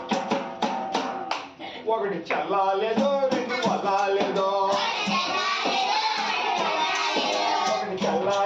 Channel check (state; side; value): identical; both; correlation 1.00